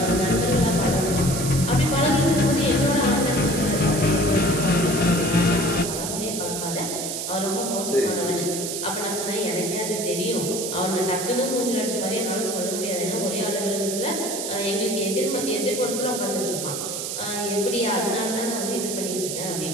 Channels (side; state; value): right; noise; hiss, 4 dB below the sound